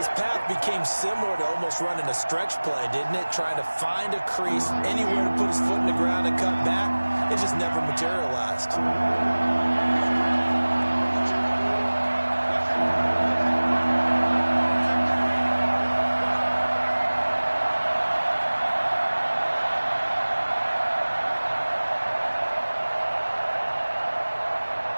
path became similar to almost running a stretch play, didn't it? Trying to find a crease, anywhere to put his foot in the ground and cut back. It just never materialized.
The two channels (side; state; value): both; inverted; correlation -1.00